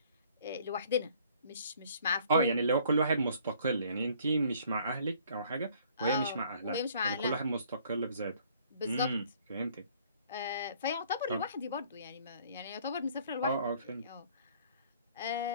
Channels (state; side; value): inverted; both; correlation -0.58